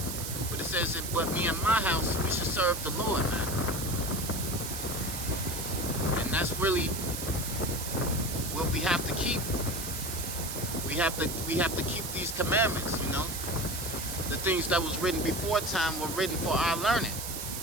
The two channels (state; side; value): noise; right; hiss, 5 dB below the sound